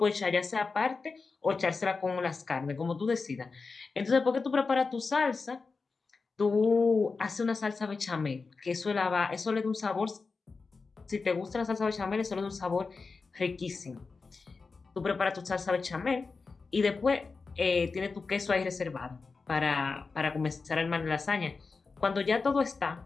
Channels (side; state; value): right; quieter; 4.4 dB